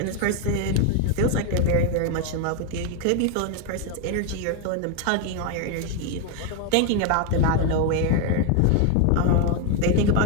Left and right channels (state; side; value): different; both; correlation 0.01